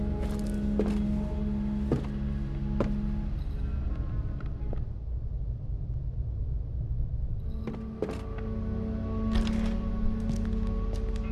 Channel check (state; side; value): identical; both; correlation 1.00